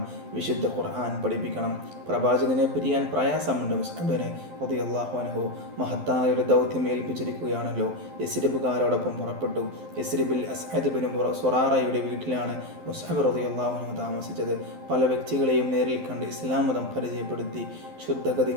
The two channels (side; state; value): left; late; 12 ms